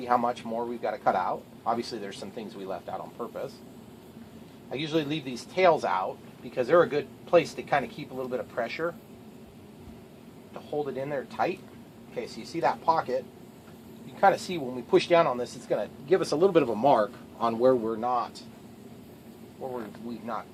how much more we've got to cut out. Obviously there's some things we left out on purpose. I usually leave these tails out because they're a good place to kind of keep a little bit of pressure to hold it in there tight. Okay, so you see that pocket. You can kind of see when we push down on this, it's going to give us a little bit of a mark on where we've not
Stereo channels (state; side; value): identical; both; correlation 1.00